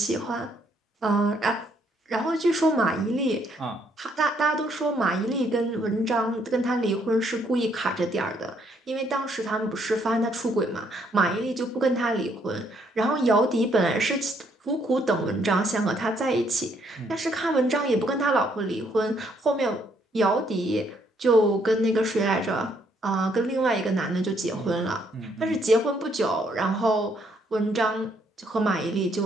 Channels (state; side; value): normal; both; correlation 0.70